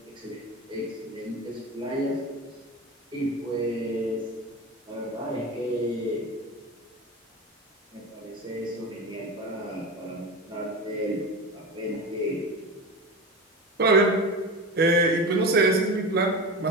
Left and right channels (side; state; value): both; normal; correlation 0.27